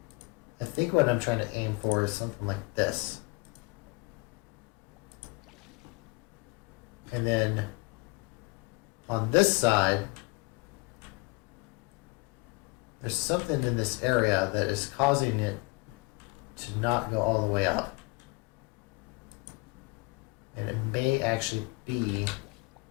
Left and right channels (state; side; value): quieter; right; 26.7 dB